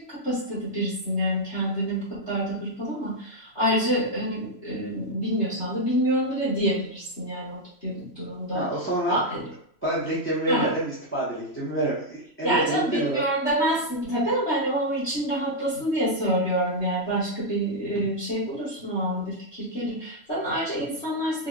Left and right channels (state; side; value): late; right; 3.0 ms